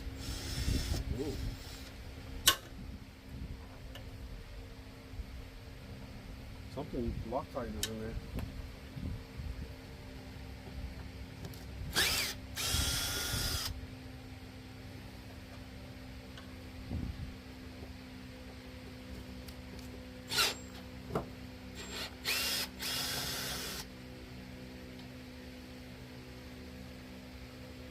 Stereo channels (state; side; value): identical; both; correlation 1.00